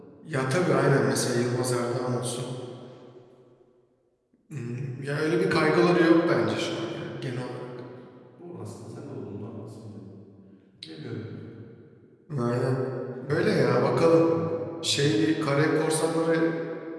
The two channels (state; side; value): identical; both; correlation 1.00